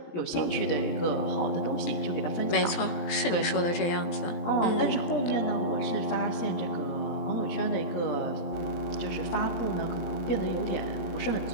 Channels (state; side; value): late; right; 18 ms